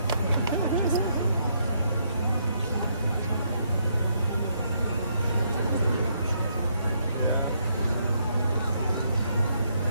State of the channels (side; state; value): both; inverted; correlation -0.74